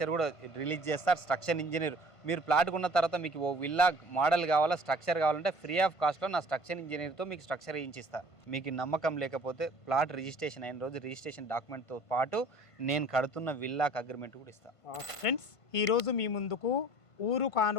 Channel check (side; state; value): right; late; 1.5 ms